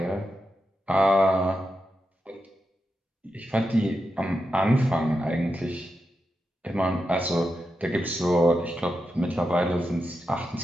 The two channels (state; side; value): normal; both; correlation 0.88